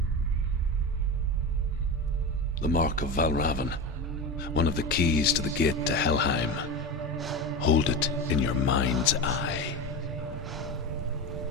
The mark of Valravn, one of the keys to the gate to Helheim. Hold it in your mind's eye.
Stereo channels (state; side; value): normal; both; correlation 0.23